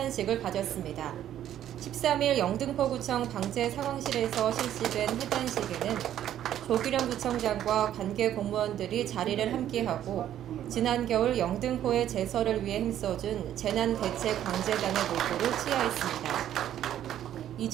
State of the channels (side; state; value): left; quieter; 11.3 dB